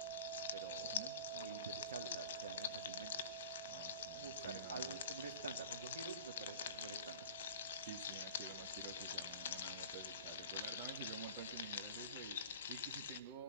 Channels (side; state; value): both; inverted; correlation -0.39